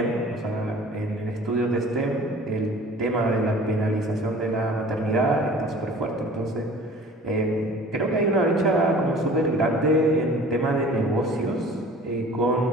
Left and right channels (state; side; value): normal; both; correlation 0.46